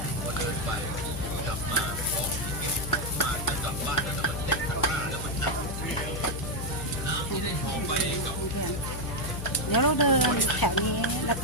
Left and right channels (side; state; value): left; noise; hum, 5 dB below the sound